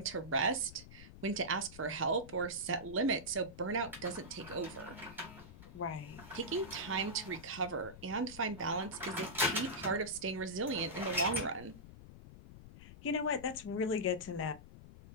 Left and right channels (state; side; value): noise; left; rumble, 16 dB below the sound